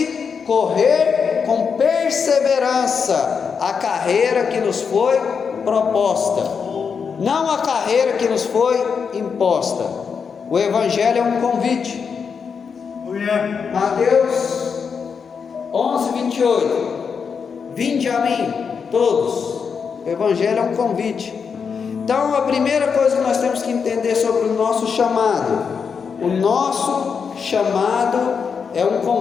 correr com perseverança a carreira que nos foi proposta, não a carreira que nos foi imposta. O Evangelho é um convite. Mateus 11, 28: vinde a mim todos. O Evangelho é um convite. Então a primeira coisa que nós temos que entender sobre o nosso chamado: o nosso chamado é um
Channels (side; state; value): right; quieter; 6.1 dB